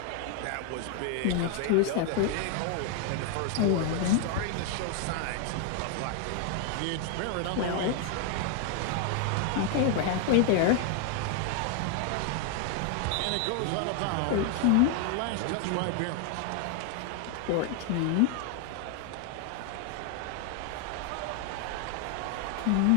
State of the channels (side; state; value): both; different; correlation 0.00